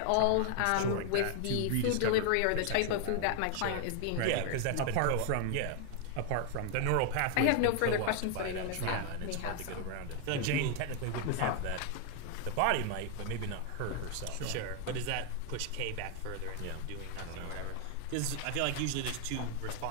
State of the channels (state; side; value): different; both; correlation 0.00